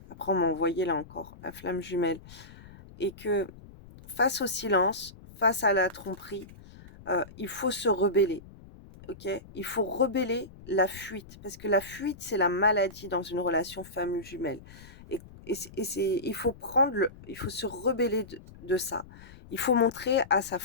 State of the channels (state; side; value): noise; left; rumble, 19 dB below the sound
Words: Après on m'a envoyé là encore la flamme jumelle et que face au silence, face à la tromperie, il faut se rebeller. OK? Il faut rebeller la fuite, parce que la fuite, c'est la maladie dans une relation femme jumelle et il faut se rebeller de ça. Il faut montrer à sa